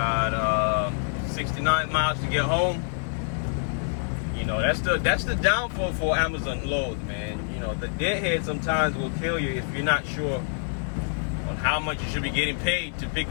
69 miles to get home. You know, that's the downfall for Amazon loads, man. You know, the deadhead sometimes will kill you if you're not sure on how much you should be getting paid to pick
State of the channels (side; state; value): right; silent; 61 dB below the other